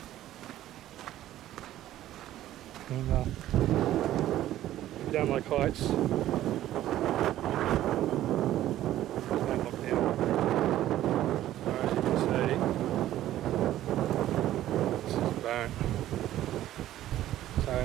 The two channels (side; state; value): left; quieter; 13.4 dB